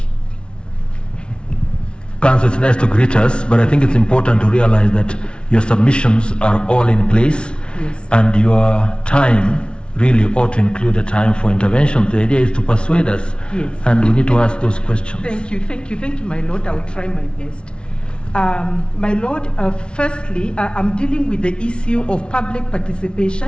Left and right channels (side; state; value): right; late; 0.057 ms